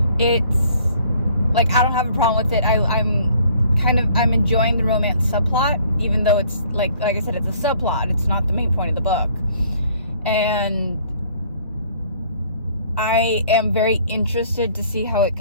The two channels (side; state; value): both; inverted; correlation -0.59